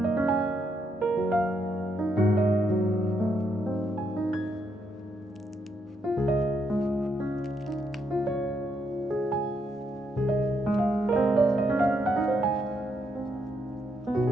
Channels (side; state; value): both; normal; correlation 0.77